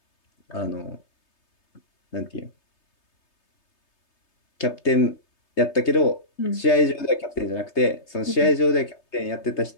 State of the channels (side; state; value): right; late; 3.3 ms